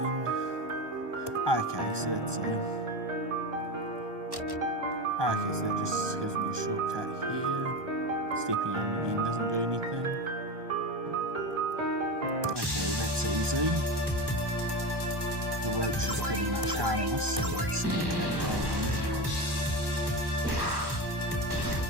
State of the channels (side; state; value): left; late; 1.2 ms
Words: Okay, so that's a... Okay, so that just gives me a shortcut here. Stepping on it again doesn't do anything. Okay, well that's easy. The roach is pretty much harmless, so let's make that going.